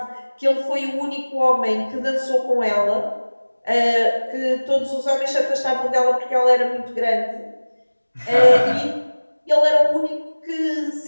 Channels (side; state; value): both; inverted; correlation -1.00